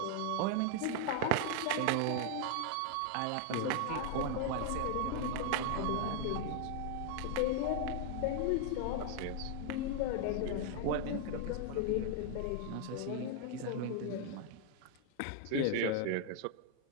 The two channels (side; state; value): both; different; correlation 0.00